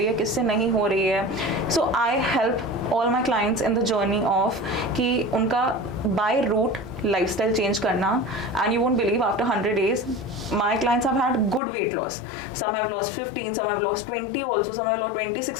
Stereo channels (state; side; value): drops out; right; at 11.6 s